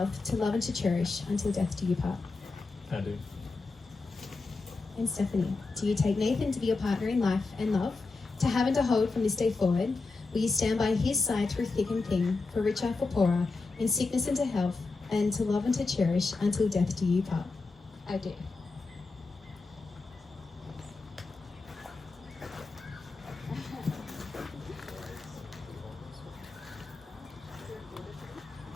to love and to cherish, until death do you part? I do. And Stephanie, do you take Nathan to be your partner in life and love, to have and to hold from this day forward? Will you stand by his side through thick and thin, for richer, for poorer, in sickness and to health, and to love and to cherish, until death do you part? I do.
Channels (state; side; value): quieter; right; 3.8 dB